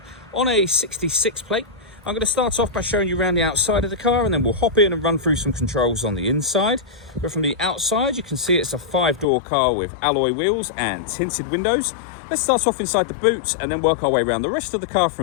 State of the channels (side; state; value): right; drops out; at 9.2 s